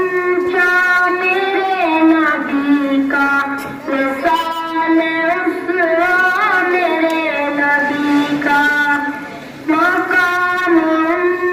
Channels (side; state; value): both; identical; correlation 1.00